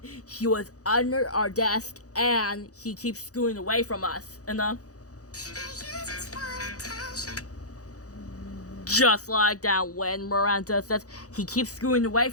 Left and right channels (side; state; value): right; late; 0.66 ms